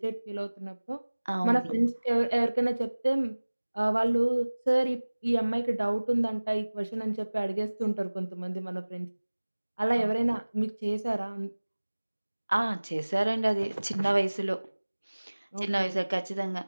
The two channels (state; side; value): inverted; both; correlation -1.00